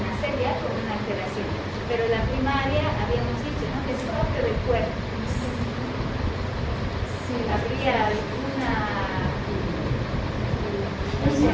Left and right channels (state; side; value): identical; both; correlation 1.00